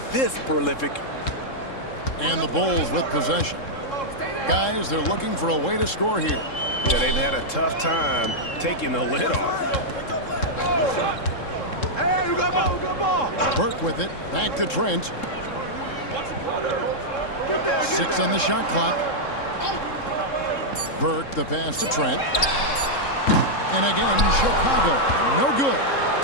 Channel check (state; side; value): late; right; 3.7 ms